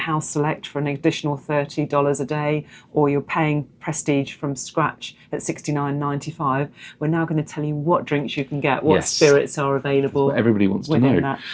Select for an additional $30 a day, or you're paying Prestige from scratch at $69.95. We're now going to tell you what drinks you can get, what spirits are available. That's what everybody wants to know. That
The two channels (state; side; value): identical; both; correlation 1.00